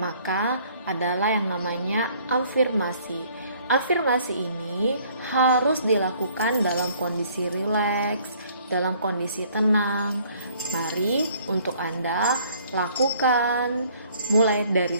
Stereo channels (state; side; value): inverted; both; correlation -0.59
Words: adalah yang namanya afirmasi. Afirmasi ini harus dilakukan dalam kondisi rileks, dalam kondisi tenang. Mari untuk Anda lakukan mulai dari